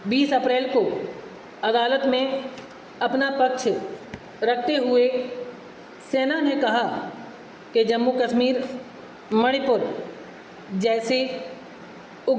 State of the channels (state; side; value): identical; both; correlation 1.00